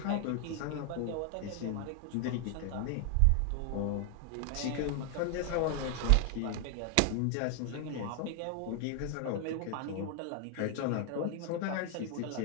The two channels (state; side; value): different; both; correlation 0.00